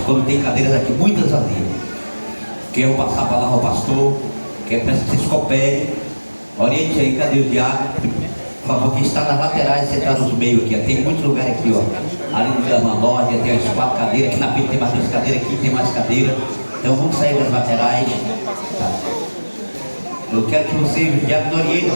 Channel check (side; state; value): both; inverted; correlation -1.00